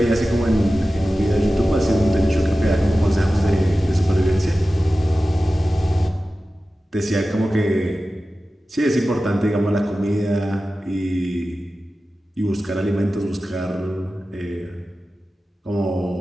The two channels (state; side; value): normal; both; correlation 0.95